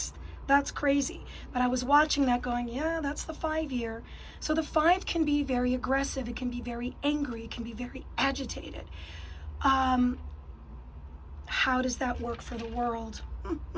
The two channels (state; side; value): identical; both; correlation 1.00